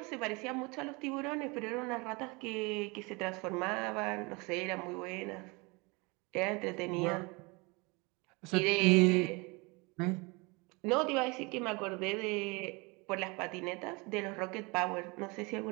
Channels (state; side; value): quieter; left; 27.5 dB